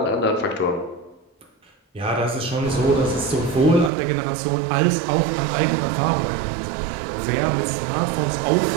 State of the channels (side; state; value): left; drops out; at 3.9 s